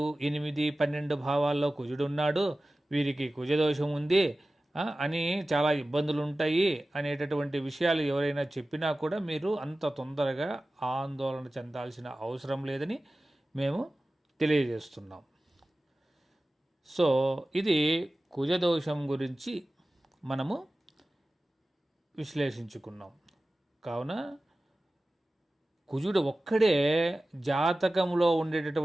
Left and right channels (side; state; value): both; normal; correlation 0.96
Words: 8, 12 భావాల్లో కుజుడున్నాడు, వీరికి కుజదోషం ఉంది అని చాలా ఇబ్బందులు ఉంటాయి అనేటటువంటి విషయాలు ఎవరైనా చెప్పినా కూడా మీరు అంత తొందరగా ఆందోళన చెందాల్సిన అవసరం లేదని మేము తెలియజేస్తున్నాం. సో ఇది కుజదోషం గురించి మనము విశ్లేషించుకున్నాం. కావున కుజుడు ఒక్కడే జాతకంలో